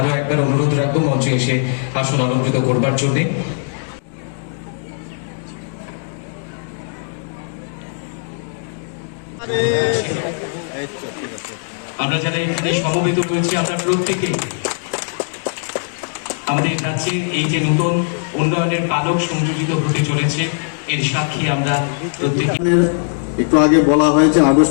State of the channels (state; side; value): silent; right; digital silence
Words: একবার অনুরোধ রাখবো মঞ্চে এসে আসন অলঙ্কৃত করবার জন্য। আমরা যারা এখানে সমবেত রয়েছি আমরা প্রত্যেকে আমাদের কাছে এই যে নতুন উন্নয়নের পালক সংযোজিত হতে চলেছে এর সাক্ষী আমরা প্রত্যেকে। একটু আগে বলা হয়েছে